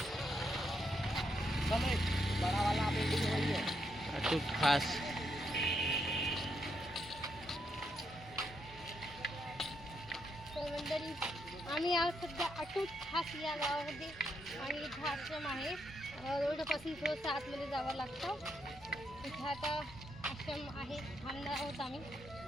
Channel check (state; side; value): normal; both; correlation 0.79